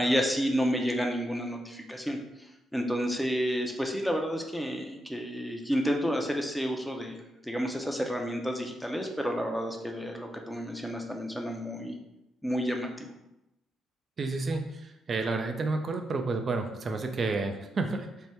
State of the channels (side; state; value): both; normal; correlation 0.86